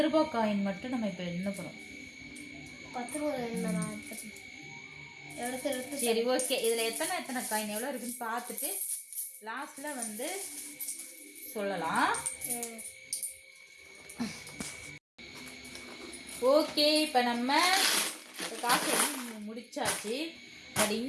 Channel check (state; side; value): identical; both; correlation 1.00